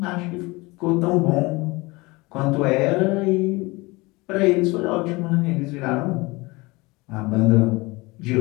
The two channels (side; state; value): right; quieter; 23.7 dB